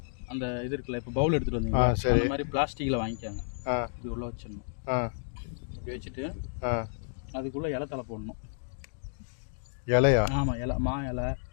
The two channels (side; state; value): right; silent; digital silence